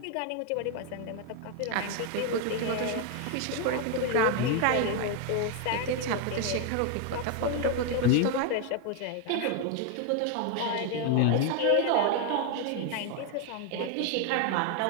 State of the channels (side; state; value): both; different; correlation 0.01